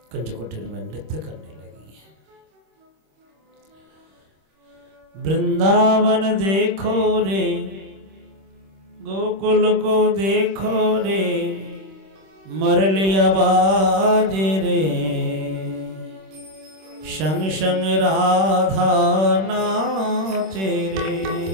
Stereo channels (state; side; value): late; left; 26 ms